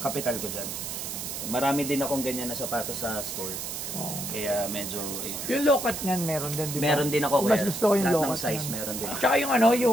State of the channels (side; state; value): right; noise; hiss, 6 dB below the sound